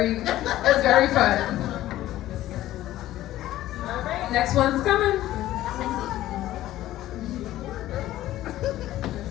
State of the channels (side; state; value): right; quieter; 14.5 dB